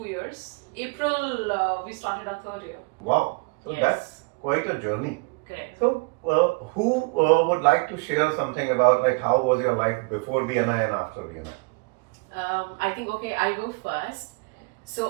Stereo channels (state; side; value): quieter; left; 30.4 dB